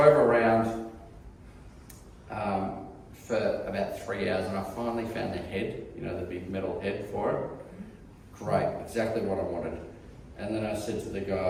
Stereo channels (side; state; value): both; identical; correlation 1.00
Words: around for about 3 hours, and I finally found the head, the big metal head for it. Great, exactly what I wanted. And then I said to the